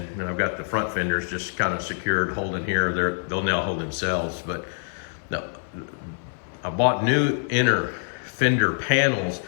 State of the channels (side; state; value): right; silent; 57 dB below the other